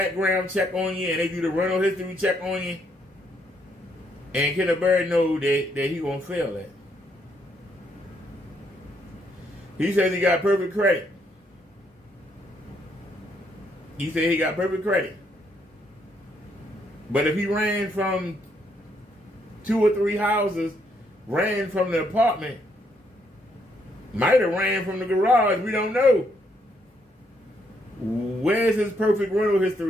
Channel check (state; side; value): normal; both; correlation 0.73